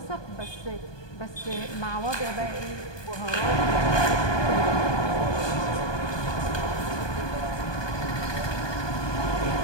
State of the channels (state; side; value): late; right; 1.2 ms